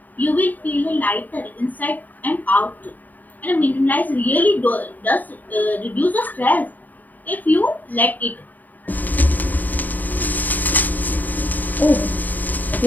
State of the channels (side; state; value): right; late; 0.084 ms